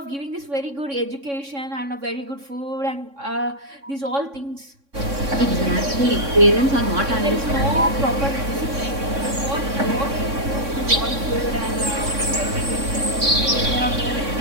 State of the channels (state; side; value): late; left; 3.6 ms